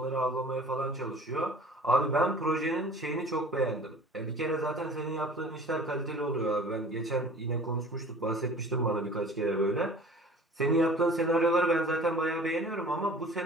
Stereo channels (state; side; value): normal; both; correlation 0.46